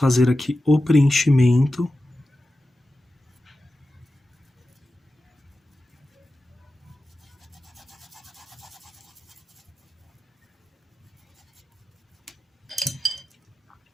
aqui o preenchimento.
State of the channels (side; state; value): both; normal; correlation 0.93